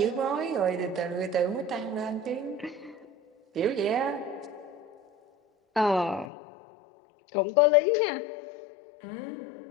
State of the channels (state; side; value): drops out; right; at 6.3 s